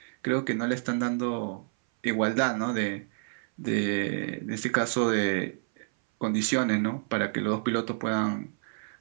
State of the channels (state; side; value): silent; left; 59 dB below the other